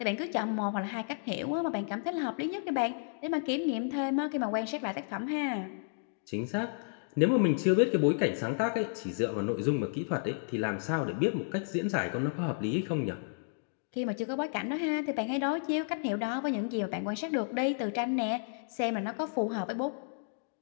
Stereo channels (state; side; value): silent; right; digital silence